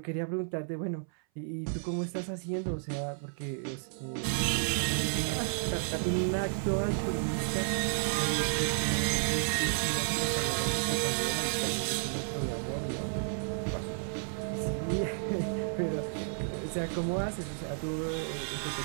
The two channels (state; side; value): silent; left; 56 dB below the other